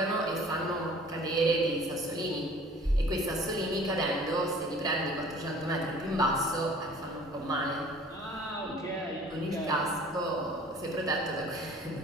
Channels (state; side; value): normal; both; correlation 0.49